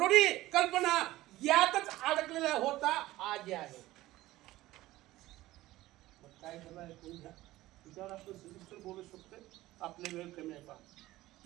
कल्पना यातच अडकलेला होता. आज आहे. मग काय झालं ऐकून घ्या. त्याच्यावर आपण सविस्तर बोलू शकतो, आपले वेळ कमी आहे पहा.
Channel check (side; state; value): left; quieter; 16.9 dB